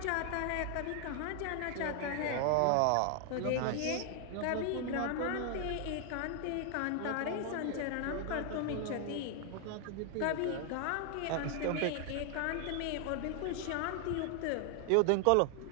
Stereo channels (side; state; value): both; different; correlation 0.00